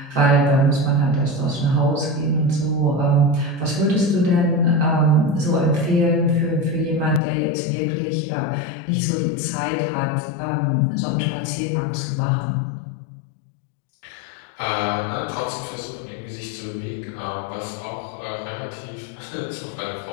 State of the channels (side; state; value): right; drops out; at 7.2 s